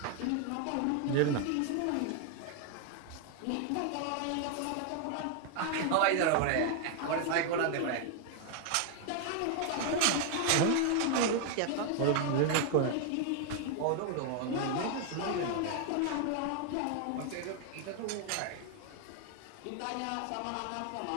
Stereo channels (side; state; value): both; different; correlation 0.00